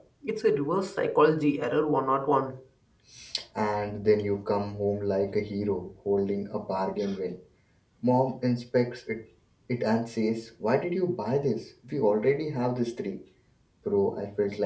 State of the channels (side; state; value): both; identical; correlation 1.00